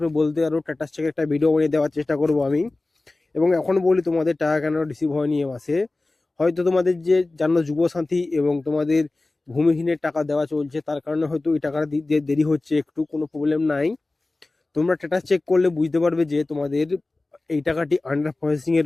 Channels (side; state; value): right; quieter; 3.1 dB